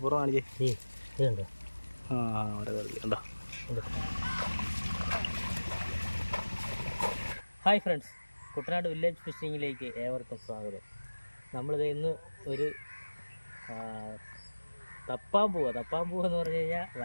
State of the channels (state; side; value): inverted; both; correlation -1.00